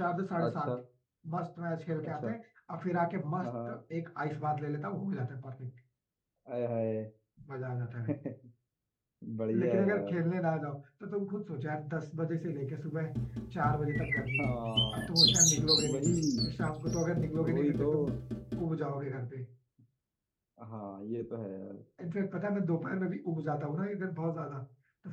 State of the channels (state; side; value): identical; both; correlation 1.00